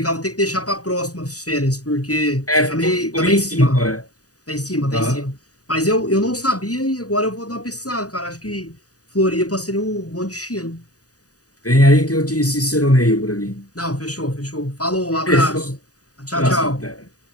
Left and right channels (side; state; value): right; late; 0.67 ms